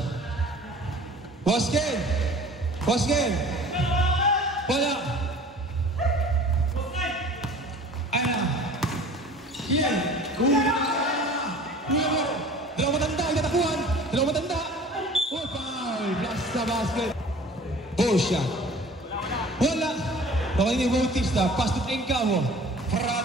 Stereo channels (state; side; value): normal; both; correlation 0.46